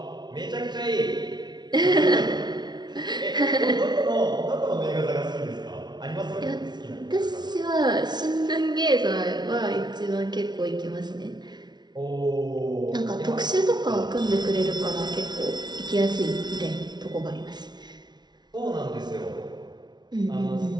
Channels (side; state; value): left; late; 0.20 ms